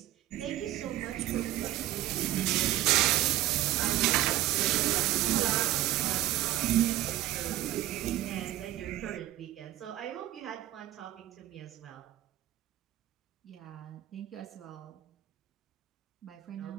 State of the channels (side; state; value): left; quieter; 14.8 dB